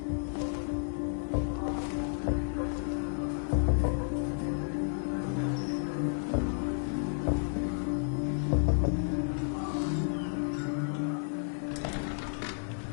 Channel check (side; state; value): right; silent; digital silence